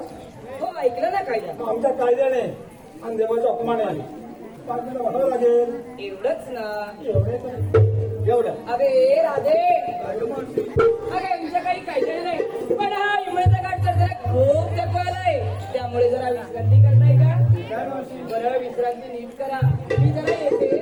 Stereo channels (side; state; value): both; identical; correlation 1.00